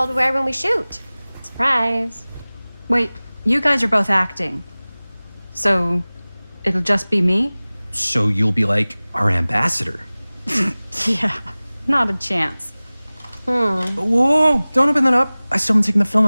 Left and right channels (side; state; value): both; inverted; correlation -0.99